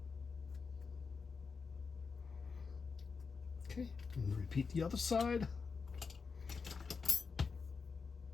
Okay, and repeat the other side.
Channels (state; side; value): quieter; right; 5.1 dB